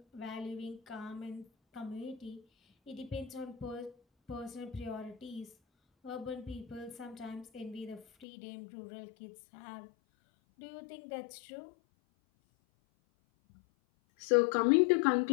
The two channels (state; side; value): drops out; right; at 8.2 s